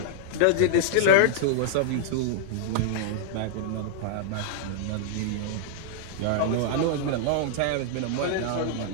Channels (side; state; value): both; different; correlation -0.01